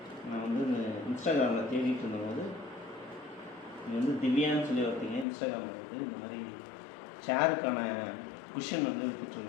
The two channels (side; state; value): right; drops out; at 5.2 s